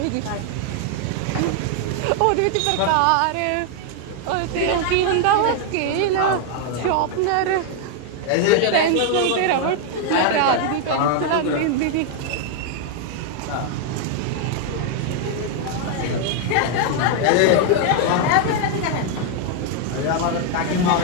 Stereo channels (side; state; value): both; different; correlation 0.00